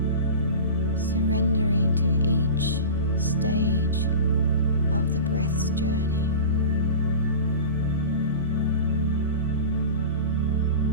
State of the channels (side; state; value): both; inverted; correlation -0.32